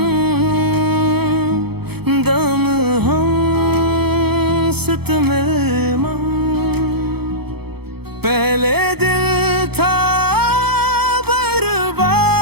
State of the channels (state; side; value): late; left; 0.97 ms